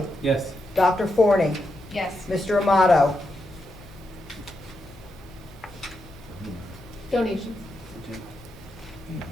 Yes. Dr. Forney, Yes. Mr. Amato, Donations.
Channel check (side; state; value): both; normal; correlation 0.84